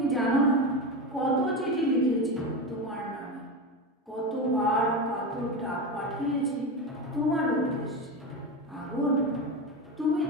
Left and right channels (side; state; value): both; normal; correlation 0.19